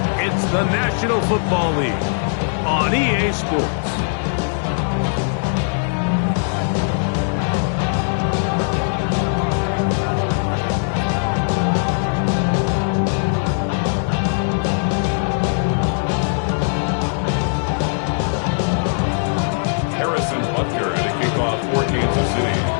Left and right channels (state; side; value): silent; right; 66 dB below the other